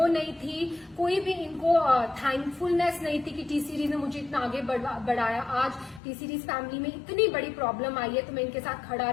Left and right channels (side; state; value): right; drops out; at 6.0 s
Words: नहीं थी, कोई भी इनको थैंकफुलनेस नहीं थी कि टी सीरीज ने मुझे इतना आगे बढ़ाया। आज टी सीरीज फैमिली में इतनी बड़ी प्रॉब्लम आई है तो मैं इनके साथ खड़ा